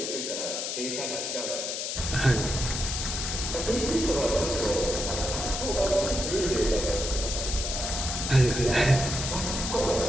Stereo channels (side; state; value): left; noise; hiss, 3 dB below the sound